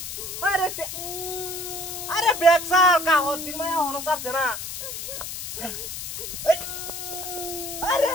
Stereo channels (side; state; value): left; noise; hiss, 7 dB below the sound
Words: আরে আরে ব্যাগ সার কাহর দিন মায়া হনো সারছে না আরে